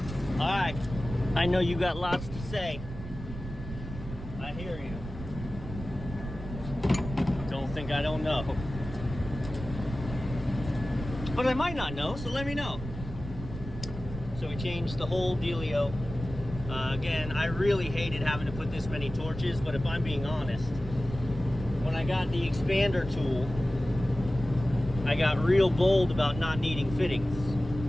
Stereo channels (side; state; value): right; noise; rumble, 10 dB below the sound